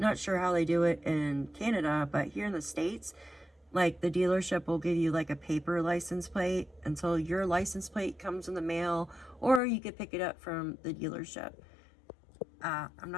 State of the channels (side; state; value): right; drops out; at 9.6 s